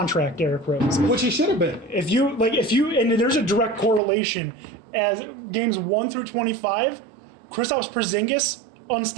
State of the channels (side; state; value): left; drops out; at 4.0 s